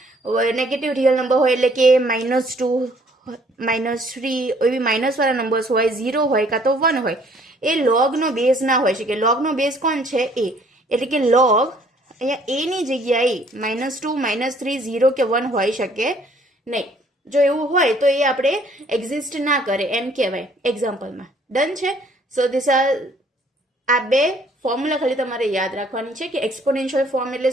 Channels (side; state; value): both; normal; correlation 0.60